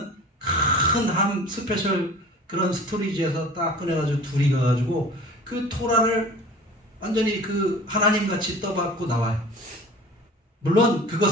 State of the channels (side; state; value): both; normal; correlation 0.42